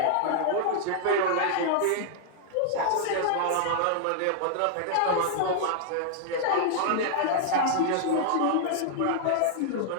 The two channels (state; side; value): different; both; correlation -0.01